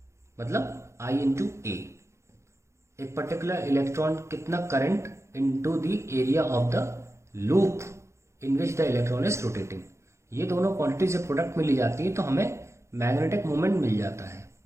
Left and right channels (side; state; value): left; late; 0.14 ms